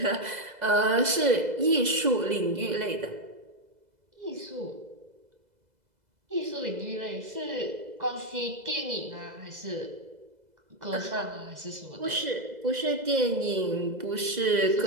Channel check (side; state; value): left; late; 2.0 ms